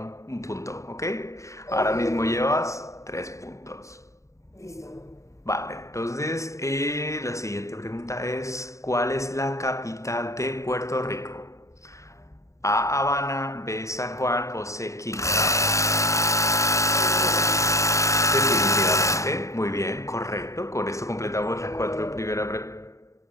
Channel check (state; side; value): late; right; 0.15 ms